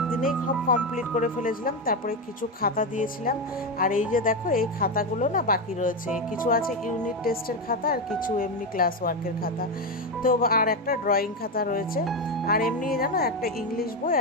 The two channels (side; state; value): both; normal; correlation 0.11